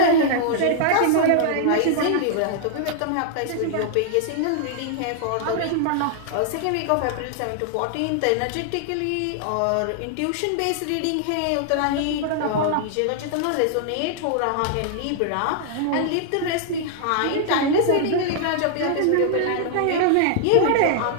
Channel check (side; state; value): both; different; correlation -0.01